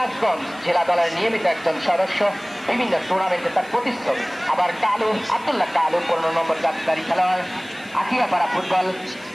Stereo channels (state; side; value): noise; left; hiss, 25 dB below the sound